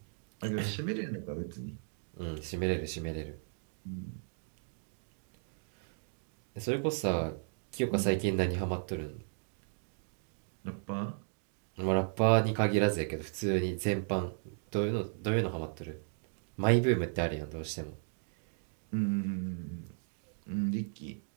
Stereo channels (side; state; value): left; silent; digital silence